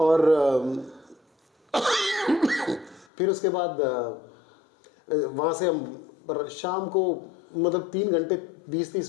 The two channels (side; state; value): right; drops out; at 3.1 s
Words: फिर उसके बाद वहां से हम शाम को मतलब 3 घंटे